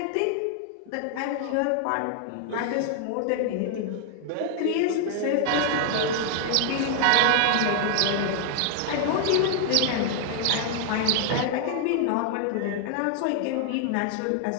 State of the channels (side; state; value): both; different; correlation 0.00